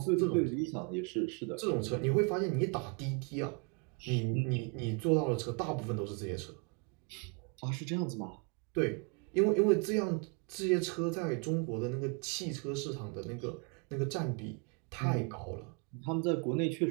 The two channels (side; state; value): left; quieter; 33.8 dB